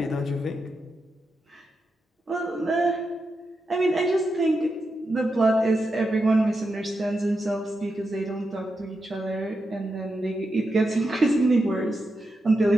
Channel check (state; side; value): normal; both; correlation 0.87